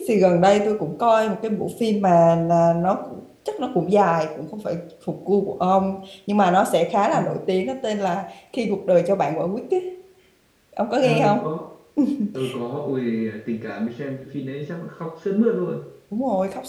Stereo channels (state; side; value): identical; both; correlation 1.00